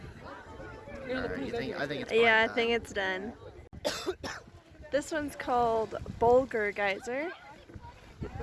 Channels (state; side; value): identical; both; correlation 1.00